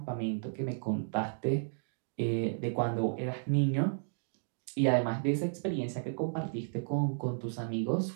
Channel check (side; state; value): left; silent; digital silence